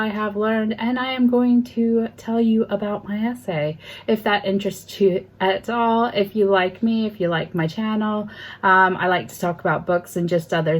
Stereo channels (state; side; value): identical; both; correlation 1.00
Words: have learned, and I am going to tell you about my essay. If that interests you at all, if you like me, if you like my channel, I like to talk about books and just other